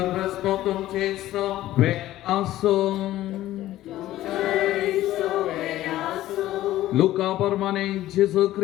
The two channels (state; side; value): quieter; right; 14.6 dB